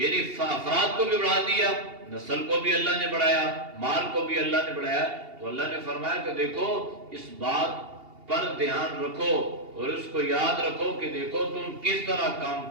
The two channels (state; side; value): late; left; 2.8 ms